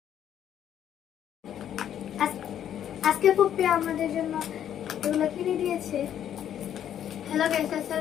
আজকে ফুপি আমাদের জন্য এগুলো কিনে দিয়েছে। হ্যালো গাইস,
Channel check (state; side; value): quieter; right; 10.1 dB